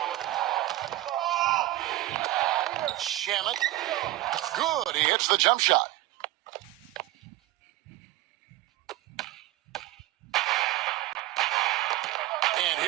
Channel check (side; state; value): left; quieter; 16.9 dB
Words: Shamet. Good. He hits the jump shot. And